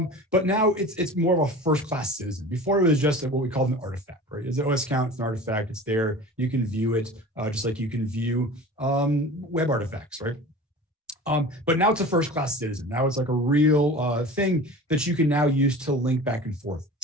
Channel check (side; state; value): both; normal; correlation 0.37